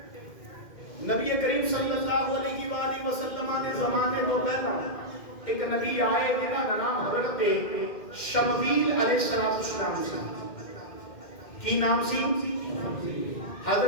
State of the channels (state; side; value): late; right; 2.1 ms